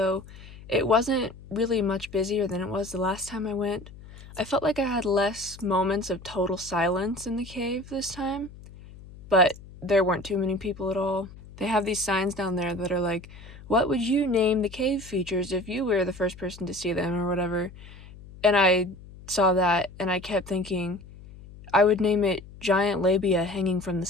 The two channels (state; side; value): noise; left; hum, 18 dB below the sound